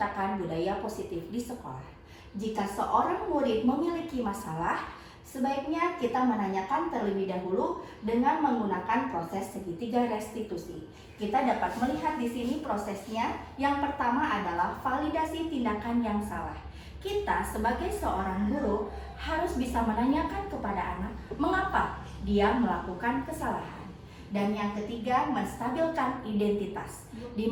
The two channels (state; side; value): identical; both; correlation 1.00